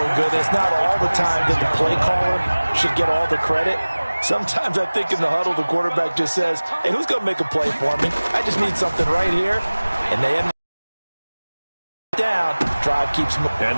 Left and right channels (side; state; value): both; inverted; correlation -1.00